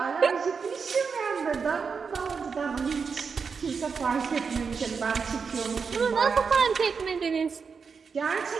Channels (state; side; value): quieter; left; 5.6 dB